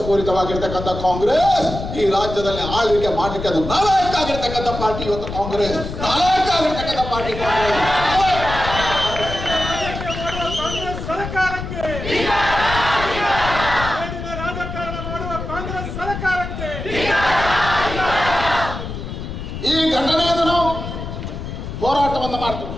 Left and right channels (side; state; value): left; noise; rumble, 7 dB below the sound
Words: ಕಾಂಗ್ರೆಸ್ ಈ ರಾಜ್ಯದಲ್ಲಿ ಆಳ್ವಿಕೆ ಮಾಡಲಿಕ್ಕೆ ಅದು ನಾಲಾಯಕ ಆಗಿರ್ತಕ್ಕಂಥ ಪಾರ್ಟಿ ಇವತ್ತು ಕಾಂಗ್ರೆಸ್, ನಾಲಾಯಕ ಆಗಿರ್ತಕ್ಕಂಥ ಪಾರ್ಟಿ ಕಾಂಗ್ರೆಸ್. ಈ ಘಟನೆಯನ್ನು ನಾವು ಹೋರಾಟವನ್ನು ಮಾಡ್ತೀವಿ.